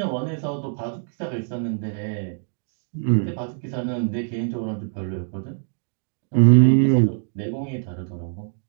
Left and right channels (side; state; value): left; silent; digital silence